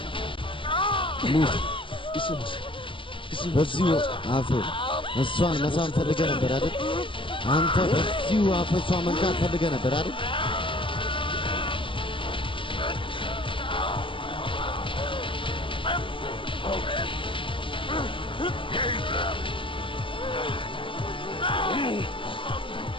ሙት በዚሁ አፍ እሷን መሳም ፈልገህ ነበር አይደል? አንተ በዚሁ አፍ እሷን መንካት ፈልገህ ነበር አይደል?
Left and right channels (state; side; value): late; right; 0.25 ms